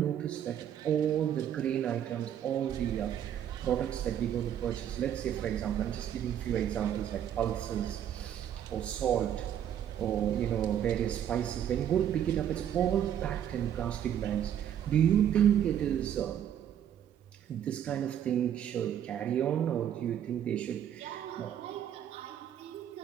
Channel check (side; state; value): left; quieter; 10.0 dB